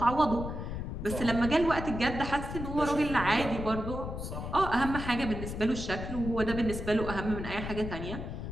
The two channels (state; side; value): noise; left; rumble, 6 dB below the sound